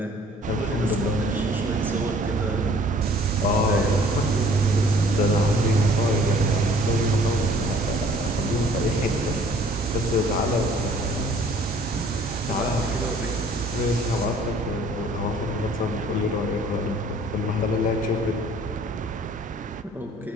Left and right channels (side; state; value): both; normal; correlation 0.54